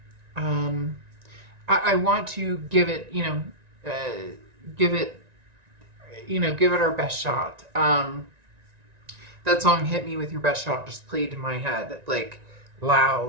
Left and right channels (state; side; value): late; left; 1.9 ms